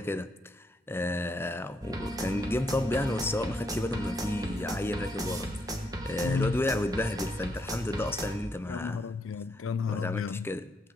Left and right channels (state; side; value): normal; both; correlation 0.76